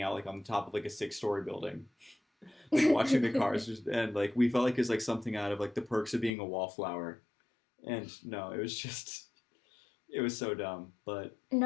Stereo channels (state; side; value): drops out; right; at 6.4 s